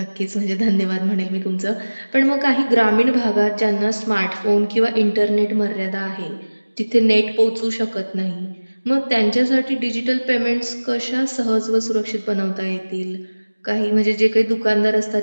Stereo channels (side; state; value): both; inverted; correlation -1.00